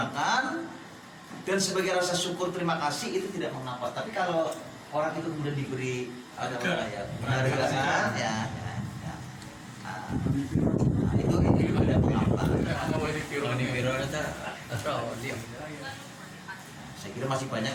dan sebagai rasa syukur terima kasih itu tidak mengapa. Tapi kalau orang itu kemudian diberi penghargaan ya. Nah, itu ada mengapa. Saya kira masih banyak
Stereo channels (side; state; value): both; identical; correlation 1.00